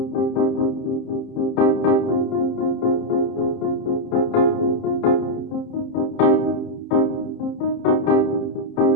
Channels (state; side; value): late; right; 30 ms